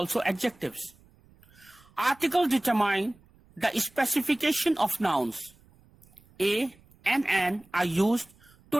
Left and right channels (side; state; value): right; noise; rumble, 28 dB below the sound